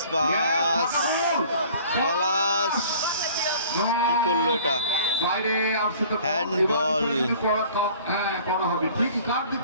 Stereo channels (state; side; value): inverted; both; correlation -0.50